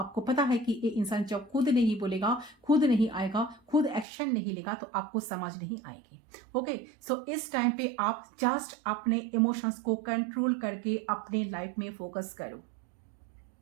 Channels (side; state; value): left; drops out; at 4.0 s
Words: पता है कि ये इंसान जब खुद नहीं बोलेगा, खुद नहीं आएगा, खुद एक्शन नहीं लेगा, तो आपको समझ नहीं आएगी। ओके, सो इस टाइम पे आप जस्ट अपने इमोशंस को कंट्रोल करके अपने लाइफ में फोकस करो।